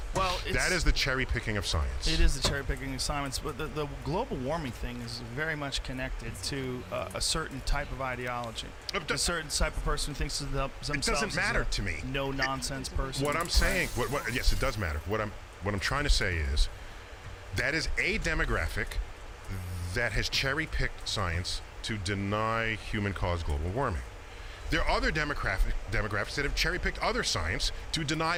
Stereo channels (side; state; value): both; identical; correlation 1.00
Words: Well, that is the cherry picking of science. It is the cherry picking of science, but the global warming thing is very much connected to a certain type of ideology. A certain type of person who thinks of themselves. It doesn't matter to me. No nonsense person. What I'm saying, yes, it does matter. What I'm trying to say is that is a demographic that has cherry picked science to deny human-caused global warming. There are other demographics that have cherry-picked other science to deny